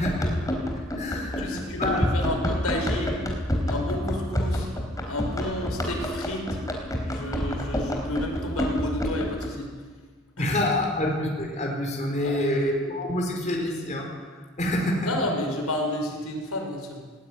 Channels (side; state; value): both; normal; correlation 0.55